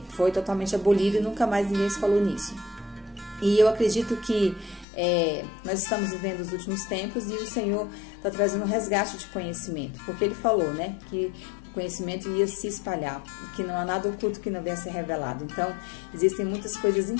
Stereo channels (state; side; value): drops out; right; at 4.9 s